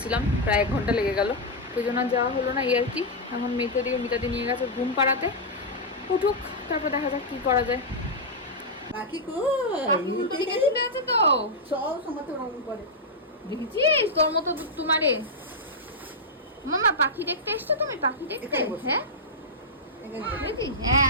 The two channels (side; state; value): both; normal; correlation -0.06